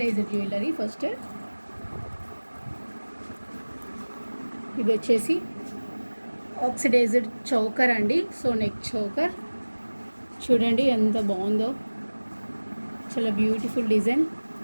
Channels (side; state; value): both; inverted; correlation -1.00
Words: jewellery. ఫస్ట్ ఇది వచ్చేసి ఆక్సిడైజ్డ్ చౌకర్ అండి. సో నెక్ చౌకర్ చూడండి ఎంత బాగుందో, చాలా బ్యూటిఫుల్ డిజైన్.